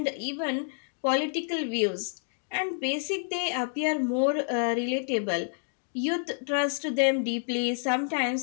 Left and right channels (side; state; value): right; silent; 59 dB below the other